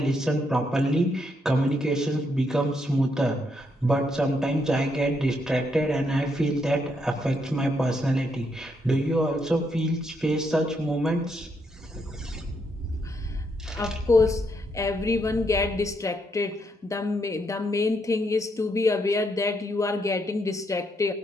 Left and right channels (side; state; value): both; normal; correlation 0.77